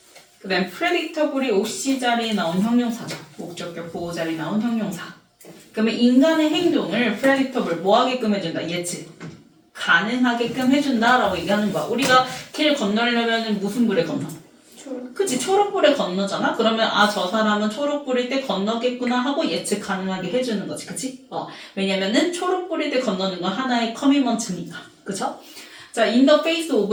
그 다음 predictable이 OC 자리에 나온 형용사죠. 목적격 보호 자리에 나온 형용사. 그러면 인간의 행동을 predictable 뭐 하게끔 해준다? 예측. 가능하게끔 해준다라고 얘기하는 거야. 우리가 길 건너려면 무슨 불에 건너? 그치, 초록불에 건너잖아? 그러면 아, 저 사람은 초록불일 때 건너겠구나 하고 예측 가능하게 해주는 거지, 그치? 왜냐면은 초록불일 때 건너는 건 하나의 커미먼트니까, 그쵸? 자, in the face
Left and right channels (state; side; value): identical; both; correlation 1.00